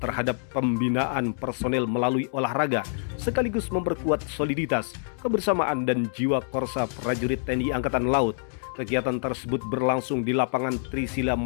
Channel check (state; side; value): silent; right; digital silence